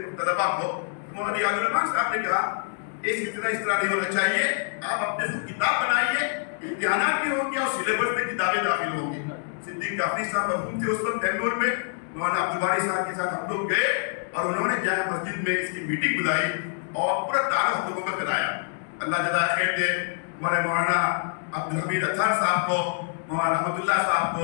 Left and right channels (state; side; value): silent; right; digital silence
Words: طلبا کو۔ مولانا ریاض الرحمان صاحب نے کہا یہ سلسلہ اس طرح نہیں ہونا چاہیے، آپ اپنے خود کتاب بنائیے، امتحانات بھی ہوں گے اور سلیبس میں کتابیں داخل ہوں گی۔ صدیق جعفری صاحب مرحوم تھے اس وقت بنگلور میں، مولانا عبدالباری صاحب کے ساتھ ہم لوگ گئے اور انہوں نے جامع مسجد میں اس کی میٹنگ بلائی اور پورا تعارف ہم لوگوں کا کرایا۔ اللہ جزائے خیر دے ہمارے مولانا عبدالحمید اطہر صاحب کو، مولانا رحمت اللہ صاحب